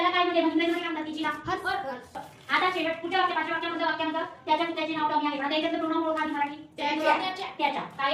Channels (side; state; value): both; identical; correlation 1.00